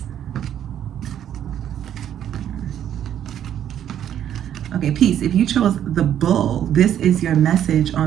Okay, peace. If you chose the bull, this is your message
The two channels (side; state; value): left; quieter; 10.3 dB